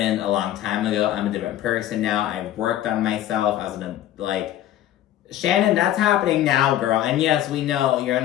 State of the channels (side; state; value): right; quieter; 12.6 dB